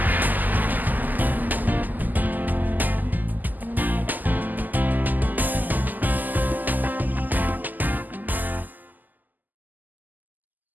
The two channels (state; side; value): late; left; 0.084 ms